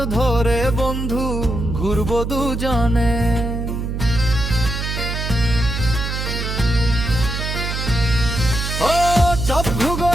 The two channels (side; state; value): right; noise; hum, 3 dB below the sound